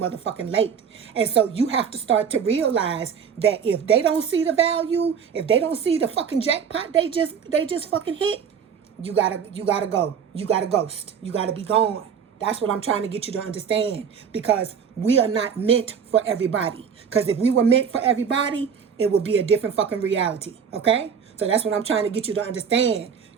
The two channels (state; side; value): quieter; left; 7.2 dB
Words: late. And so you have to start to realize that if they don't see the value, if they don't see the fucking jackpot they just fucking hit, you gotta go. You gotta ghost. You gotta be gone. That's what I'm trying to get you to understand, because we are not meant for everybody. Because if we were meant for everybody, it would be a different fucking reality. Okay? So that's what I'm trying to get you to understand.